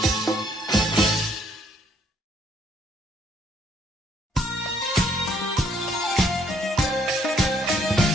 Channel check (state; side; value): normal; both; correlation 0.67